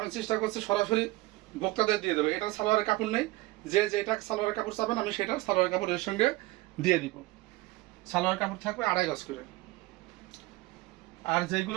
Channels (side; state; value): left; quieter; 20.2 dB